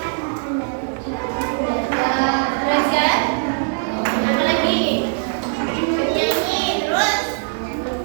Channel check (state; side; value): silent; left; 65 dB below the other